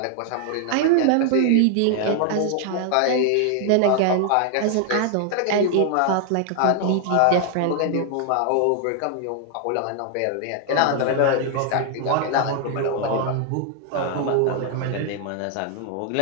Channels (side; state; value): both; different; correlation 0.00